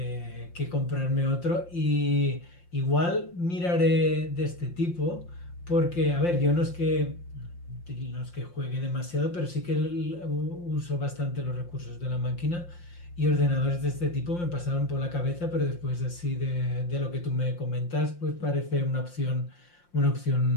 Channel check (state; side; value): late; right; 5.7 ms